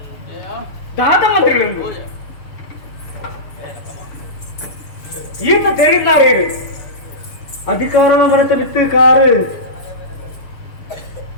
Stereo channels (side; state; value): right; late; 6.7 ms